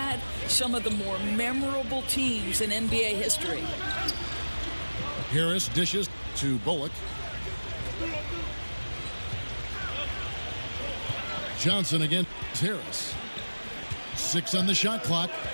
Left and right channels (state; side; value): inverted; both; correlation -1.00